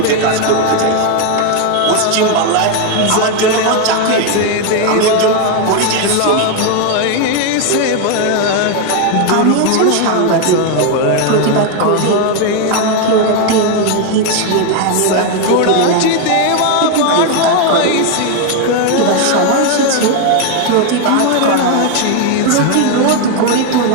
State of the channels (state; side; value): different; both; correlation 0.01